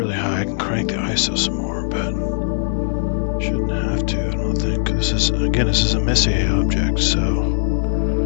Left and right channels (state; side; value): silent; right; digital silence